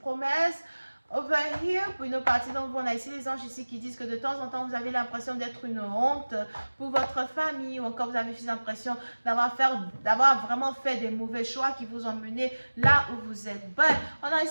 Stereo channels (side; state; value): both; inverted; correlation -1.00